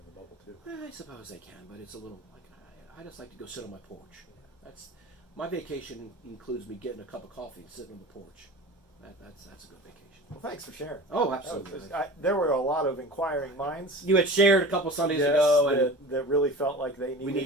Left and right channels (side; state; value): both; normal; correlation 0.36